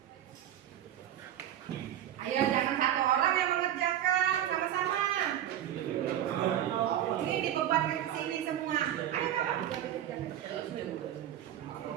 Ayo jangan satu orang yang mengerjakan, sama-sama. Ini dibebankan ke sini semua. Ayo kakak kerjakan.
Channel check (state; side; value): quieter; left; 11.4 dB